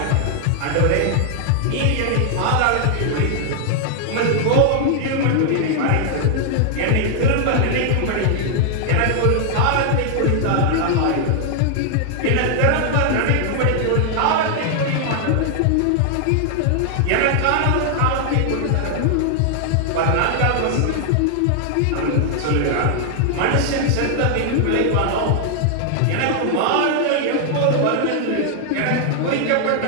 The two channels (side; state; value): both; different; correlation 0.00